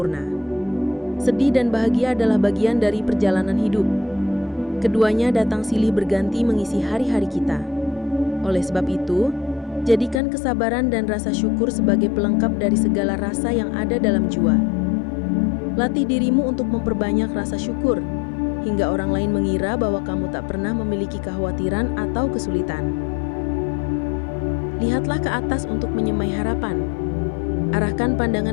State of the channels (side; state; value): right; drops out; at 10.2 s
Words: Sedih dan bahagia adalah bagian dari perjalanan hidup. Keduanya datang silih berganti mengisi hari-hari kita. Oleh sebab itu, jadikan kesabaran dan rasa syukur sebagai pelengkap dari segala rasa yang ada dalam jiwa. Latih dirimu untuk memperbanyak rasa syukur, hingga orang lain mengira bahwa kamu tak pernah memiliki kekhawatiran atau kesulitan. Lihatlah ke atas untuk menyemai harapan. Arahkan